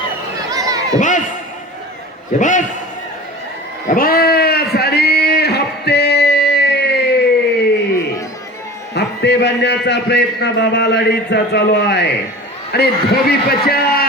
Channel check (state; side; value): normal; both; correlation 0.37